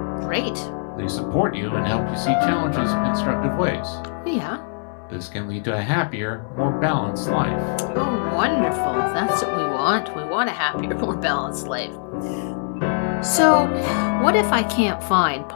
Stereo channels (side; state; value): right; silent; digital silence